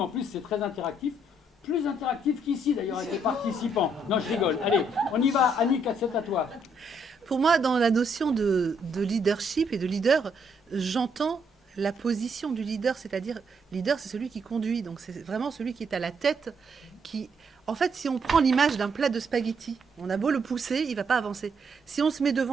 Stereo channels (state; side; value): normal; both; correlation 0.73